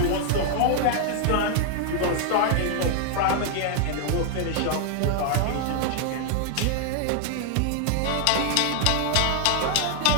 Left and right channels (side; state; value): both; different; correlation 0.00